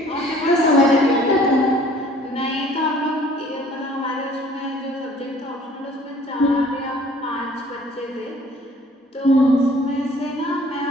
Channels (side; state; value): both; normal; correlation 0.54